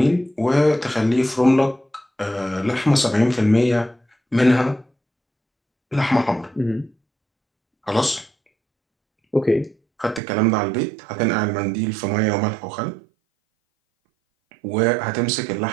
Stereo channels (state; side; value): drops out; left; at 10.2 s